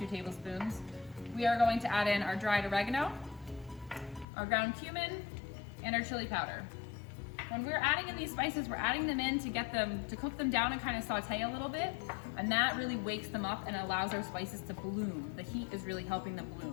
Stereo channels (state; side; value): drops out; right; at 4.2 s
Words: tablespoons. We are going to add in our dried oregano, our ground cumin, and our chili powder. When we're adding in these spices, we're adding them in to cook them down and kind of saute a little bit, and that really wakes them up and allows our spices to bloom. The heat is really helping them